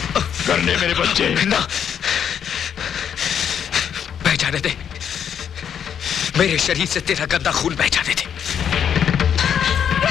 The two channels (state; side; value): quieter; right; 8.4 dB